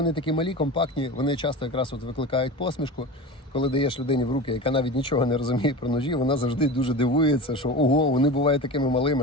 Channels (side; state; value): both; normal; correlation 0.30